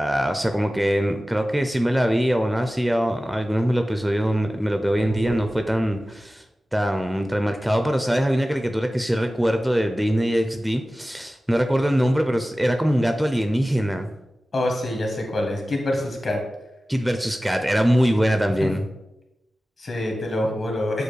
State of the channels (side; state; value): both; normal; correlation 0.96